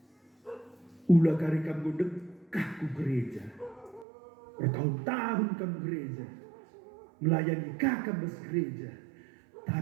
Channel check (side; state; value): left; drops out; at 4.0 s